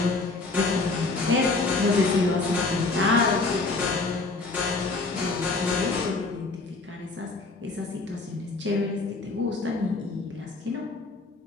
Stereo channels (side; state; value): right; quieter; 3.6 dB